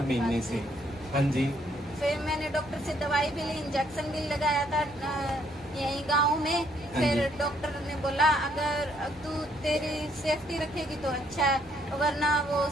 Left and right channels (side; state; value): both; normal; correlation 0.69